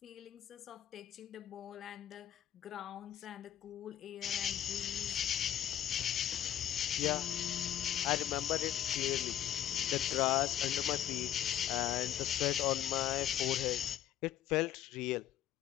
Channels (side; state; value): right; quieter; 11.3 dB